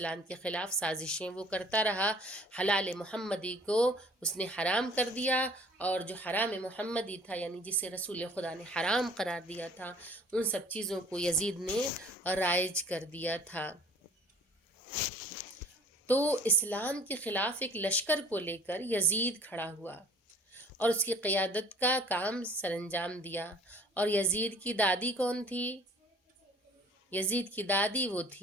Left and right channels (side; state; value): both; normal; correlation 0.52